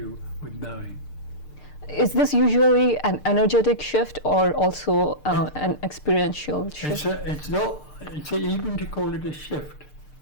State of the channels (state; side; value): late; right; 6.7 ms